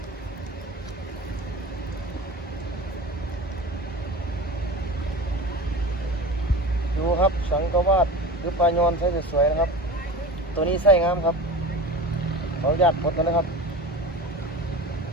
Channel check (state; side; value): normal; both; correlation 0.32